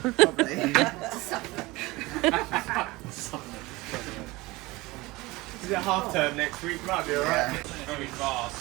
Is it half term next week? Might be alright. Very fast.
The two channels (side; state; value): left; quieter; 21.3 dB